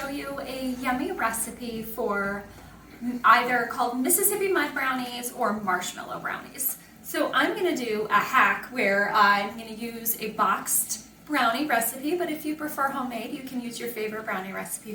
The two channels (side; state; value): both; identical; correlation 1.00